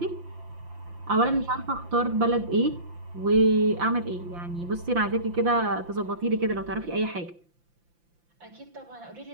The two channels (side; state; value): left; late; 5.8 ms